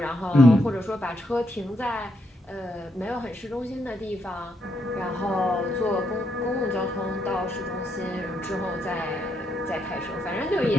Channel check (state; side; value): normal; both; correlation 0.78